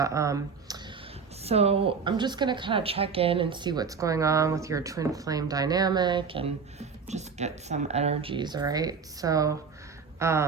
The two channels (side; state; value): left; quieter; 5.6 dB